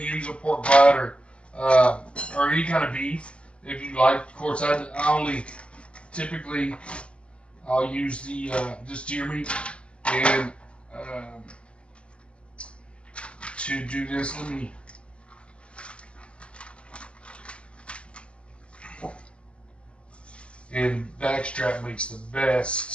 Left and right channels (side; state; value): right; late; 0.056 ms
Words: a pork butt, or any kind of beef if you like. Of course, I only typically I'll use the just deer meat. And to do this, let me. And backstrap makes the